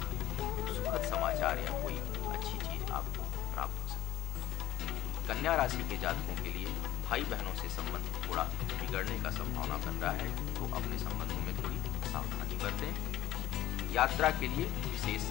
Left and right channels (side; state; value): right; quieter; 14.2 dB